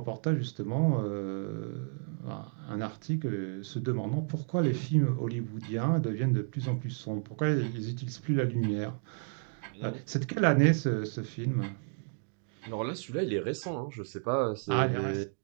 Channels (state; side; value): silent; left; 56 dB below the other